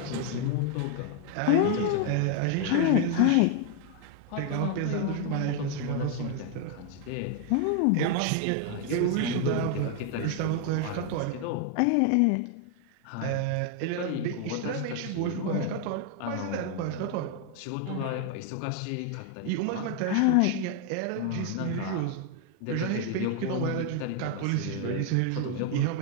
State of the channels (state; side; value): different; both; correlation 0.00